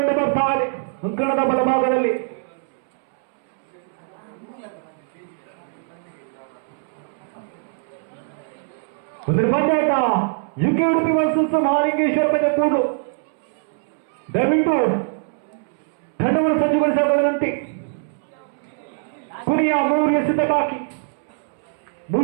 ಬರ್ತಾ ಇದೆ ಅಂಕಣದ ಬಲಭಾಗದಲ್ಲಿ. ಒಂದು ಬಂದಾಟ ಯುಕೆ ಉಡುಪಿ ವರ್ಸಸ್ ಮಹಾಲಿಂಗೇಶ್ವರ ಬಜೆಟ್ಕೂಡು. ದಯವಿಟ್ಟು ತಂಡವನ್ನು ಸಜ್ಜುಗೊಳಿಸಬಹುದಂತೆ. ಕೊನೆಯ 3 ಎಸೆತ ಬಾಕಿ,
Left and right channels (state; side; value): silent; left; 64 dB below the other